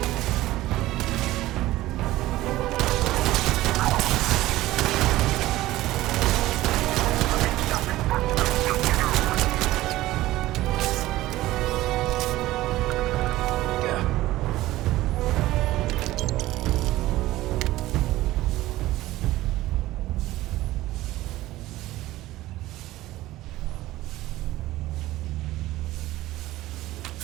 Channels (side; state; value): left; quieter; 16.6 dB